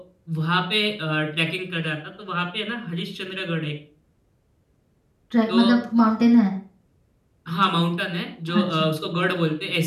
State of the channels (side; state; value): both; identical; correlation 1.00